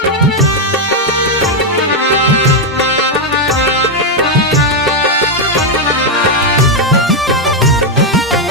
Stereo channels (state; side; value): normal; both; correlation 0.03